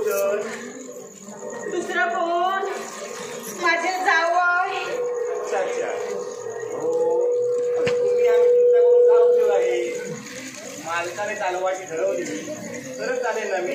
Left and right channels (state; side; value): identical; both; correlation 1.00